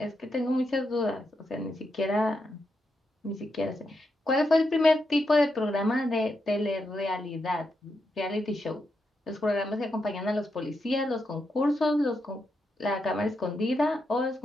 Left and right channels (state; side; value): normal; both; correlation 0.84